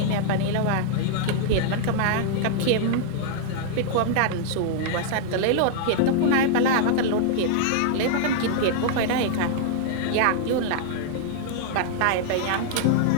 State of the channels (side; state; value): both; different; correlation -0.01